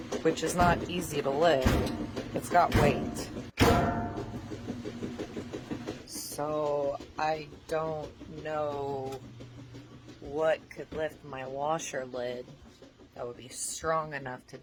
which is not easy to lift, it's got weight. So I don't know what could lift my washer lid that would be strong enough to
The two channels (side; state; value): both; identical; correlation 1.00